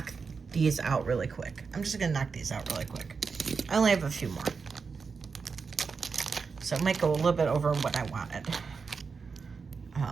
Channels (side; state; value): left; quieter; 5.2 dB